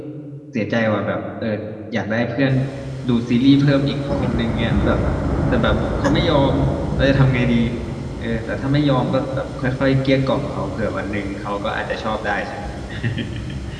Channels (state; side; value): identical; both; correlation 1.00